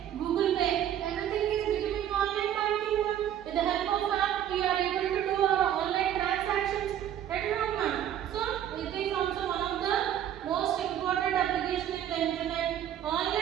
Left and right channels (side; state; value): left; quieter; 10.6 dB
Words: Google pay, everything is becoming online banking. With the help of app we are able to do our online transactions at home. So it is also one of the most important application in the internet.